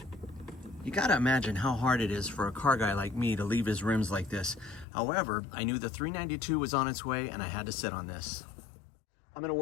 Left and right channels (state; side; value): drops out; right; at 4.9 s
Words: You gotta imagine how hard it is for a car guy like me to leave his rims like this. However, I knew the 392 was on its way and I had to sit on this. I'm gonna